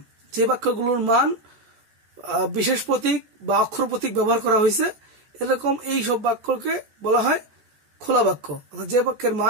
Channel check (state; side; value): late; left; 14 ms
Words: যে বাক্যগুলোর মান বিশেষ প্রতীক বা অক্ষর প্রতীক ব্যবহার করা হয়েছে, এরকম এই সব বাক্যকে বলা হয় খোলা বাক্য। অর্থাৎ যে বাক্যের